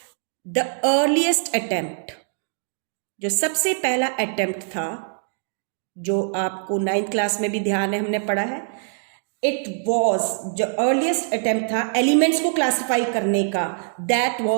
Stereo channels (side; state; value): left; silent; digital silence